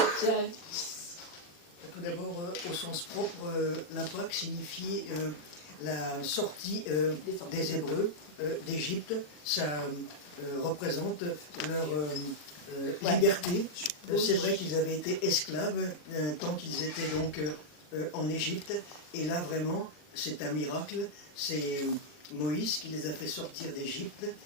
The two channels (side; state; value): right; late; 40 ms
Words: Tout d'abord, au sens propre, la Pâque signifie la sortie des Hébreux d'Égypte. Ça représente leur liberté. C'est vrai qu'ils avaient été esclaves tant qu'ils étaient donc en Égypte. Et là, vraiment, c'est un miracle. C'est Moïse qui les a fait sortir d'Égypte.